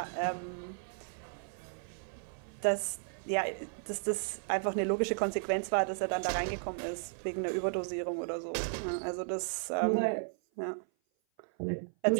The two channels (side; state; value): left; silent; 55 dB below the other